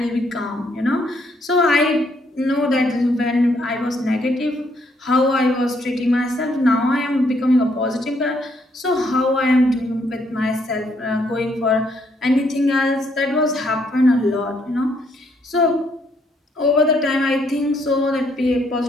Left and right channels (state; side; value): normal; both; correlation 0.71